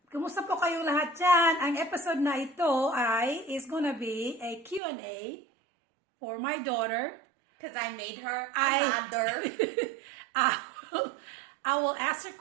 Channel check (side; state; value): left; drops out; at 4.8 s